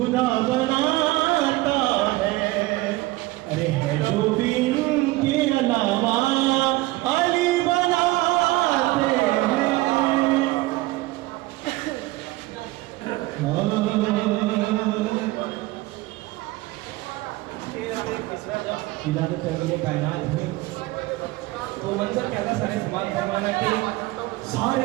बनाता है। अरे है जो भी इनके अलावा अली बनाते हैं। विलादत तंगीले कायनात हुई तो मंजर क्या था, सारे समाज फरमाना के सारे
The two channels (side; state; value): left; quieter; 19.3 dB